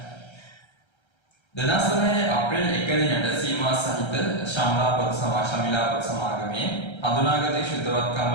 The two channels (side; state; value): right; late; 1.3 ms